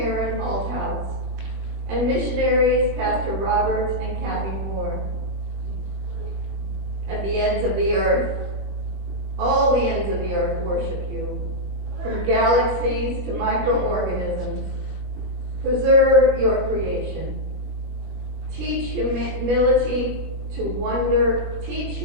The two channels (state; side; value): late; left; 21 ms